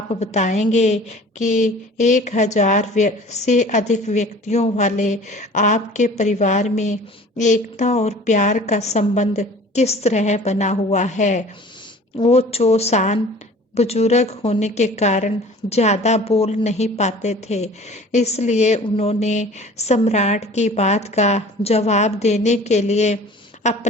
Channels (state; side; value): normal; both; correlation 0.46